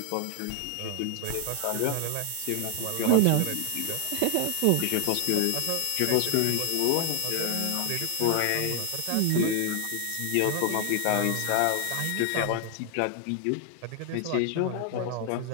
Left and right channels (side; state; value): both; different; correlation 0.01